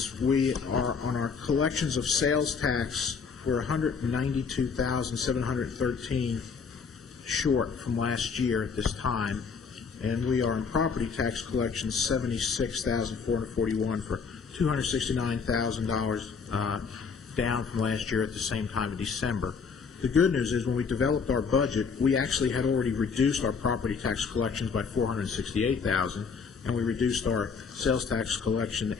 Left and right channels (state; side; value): quieter; right; 5.6 dB